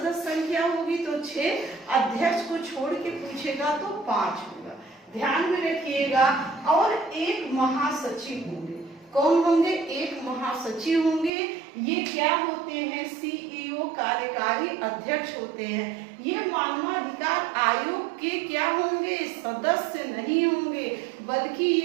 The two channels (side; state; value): left; drops out; at 11.3 s